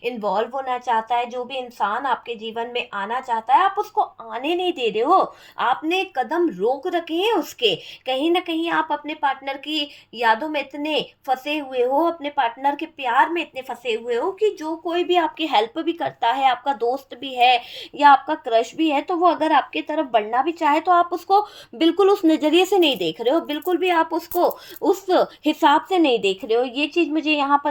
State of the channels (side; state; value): both; identical; correlation 1.00